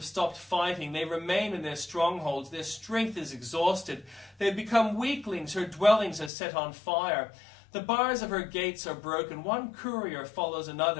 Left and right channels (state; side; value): drops out; right; at 6.3 s